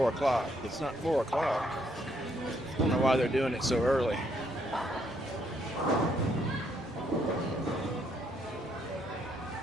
o'clock. It's not 4 o'clock. I don't know why they're doing it so early.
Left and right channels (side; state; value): both; normal; correlation 0.72